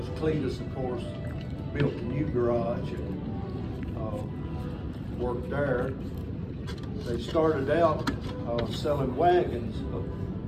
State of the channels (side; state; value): both; identical; correlation 1.00